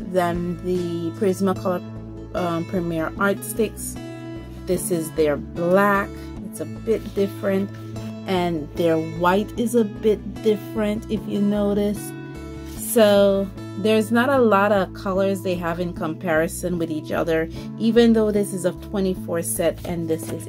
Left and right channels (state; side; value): identical; both; correlation 1.00